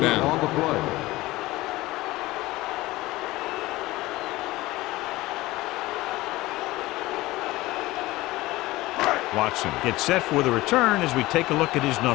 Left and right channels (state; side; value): quieter; right; 18.8 dB